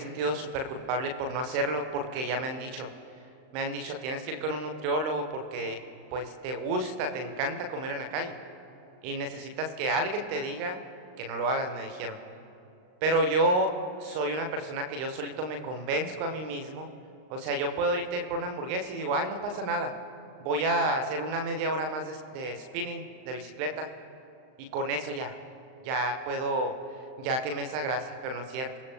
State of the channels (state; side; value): late; left; 39 ms